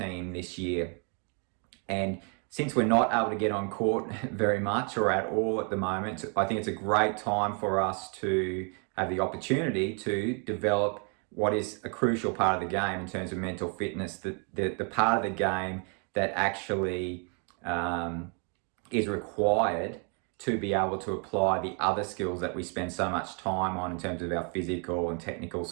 this year. And since we're not able to get on court very much or at all at the moment, I think it's a great time for us to have the opportunity to develop what is a crucial part of the game in terms of mental fitness, the part of the game that actually is required to be able to apply the other skills that we spend so much time on in terms of our physical and technical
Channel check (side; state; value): left; quieter; 38.2 dB